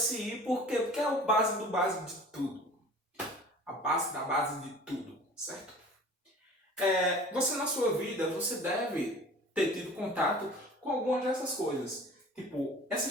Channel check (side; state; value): both; normal; correlation 0.44